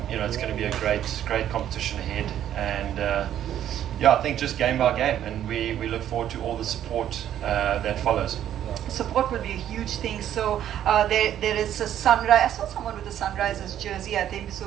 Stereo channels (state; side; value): quieter; left; 10.9 dB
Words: it's going to be a great competition ahead. And I think just game by game, and we look forward to all the support that follows. Support will be a huge thing. So there is a Sunrise. I saw someone with a Sunrisers jersey, I think. So